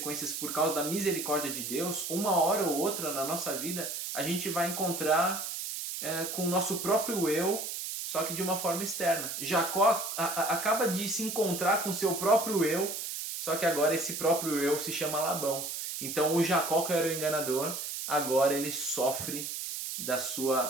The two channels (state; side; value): noise; right; hiss, 5 dB below the sound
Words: por causa da misericórdia de Deus, uma hora ou outra na nossa vida a gente vai encontrar com o nosso próprio eu só que de uma forma externa. Jacó acaba de se encontrar com seu próprio eu, só que agora esse próprio eu se chama Labão. Então o Jacó, que era o enganador, agora ele sofre da